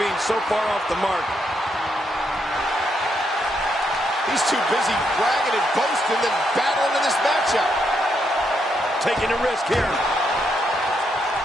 so far off the mark. He's too busy bragging and boasting than battling in this matchup. Taking a risk here.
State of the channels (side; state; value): both; normal; correlation 0.78